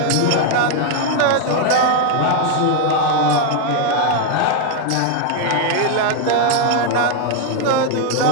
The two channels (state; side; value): different; both; correlation 0.00